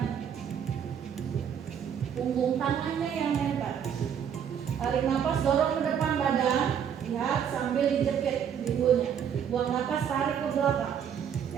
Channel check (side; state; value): left; quieter; 8.3 dB